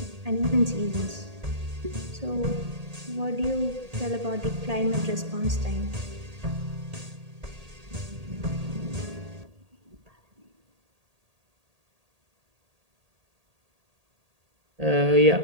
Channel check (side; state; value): left; late; 1.8 ms